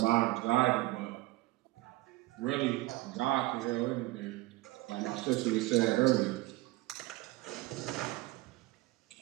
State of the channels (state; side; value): quieter; left; 19.3 dB